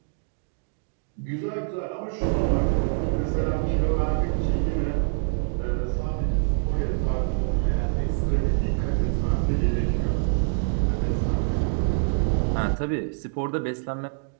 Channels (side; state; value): left; silent; digital silence